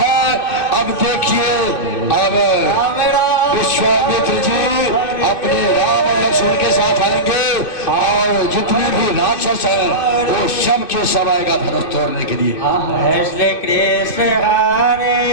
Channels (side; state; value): right; late; 2.6 ms